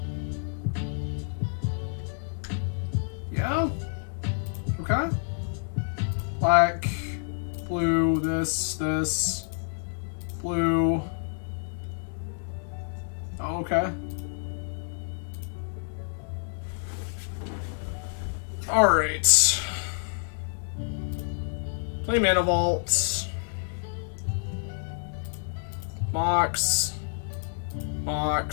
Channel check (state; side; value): silent; right; digital silence